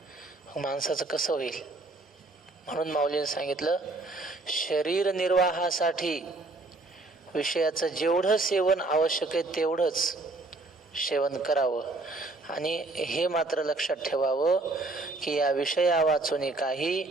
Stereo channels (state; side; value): quieter; left; 3.3 dB